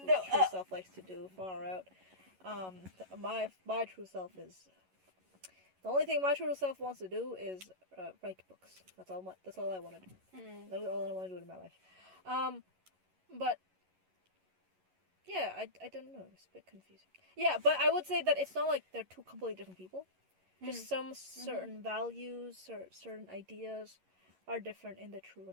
true self likes to do, far out. My true self is... The only thing my true self wants to do is write books. That's all I want to do. That's all I want to do in my life. But yeah, I don't know. It's a bit confusing. Yeah, but I would say that it's not like they're two completely different people. Just some certain values or certain ideas are different in the true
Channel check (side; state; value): left; late; 11 ms